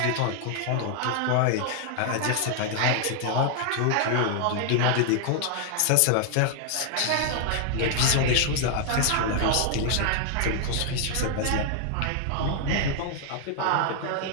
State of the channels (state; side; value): different; both; correlation 0.00